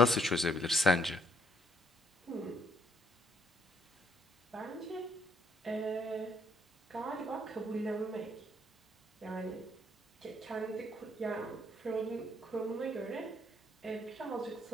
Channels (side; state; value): both; normal; correlation 0.69